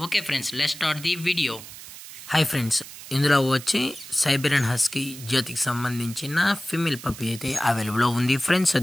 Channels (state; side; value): noise; right; hiss, 14 dB below the sound